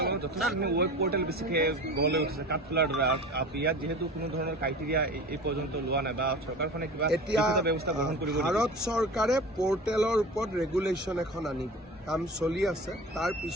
আংলঙত যথেষ্টখিনি ৱেব পৰ্টেল বেছিকৈ গঢ়লৈ উঠিছে কাঠফুলাৰ দ্বাৰা। ইয়াত যিহেতু কোনো ধৰণৰ ক্ৰাইটেৰিয়া এই পৰ্যন্ত লোৱা নাই বা চৰকাৰখনে কিবা ব্যৱস্থা গ্ৰহণ কৰিব। ভাৰত চৰকাৰে পৰ্টেলৰ ওপৰত ৰেগুলেশ্যন এখন আনিব, কাম চলি আছে। তাৰ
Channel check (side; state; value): both; normal; correlation 0.36